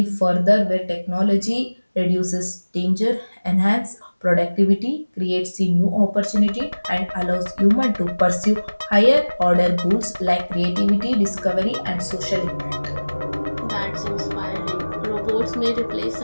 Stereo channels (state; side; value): inverted; both; correlation -1.00